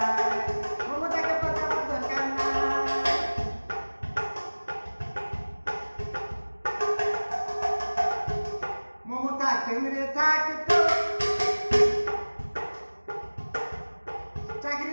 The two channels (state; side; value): inverted; both; correlation -1.00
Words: মমতাকে পাঠাবার দরকার নাই। মমতা কেন্দ্রে থাকতো